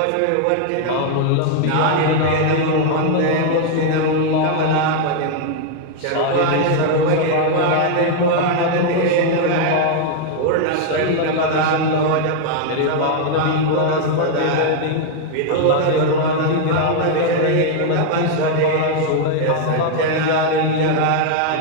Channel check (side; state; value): both; different; correlation 0.00